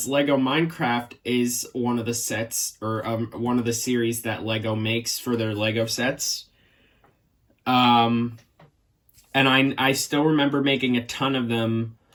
Lego Minecraft is one of the sets, or one of the series that Lego makes for their Lego sets. And I still remember making a ton of them,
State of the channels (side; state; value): both; identical; correlation 1.00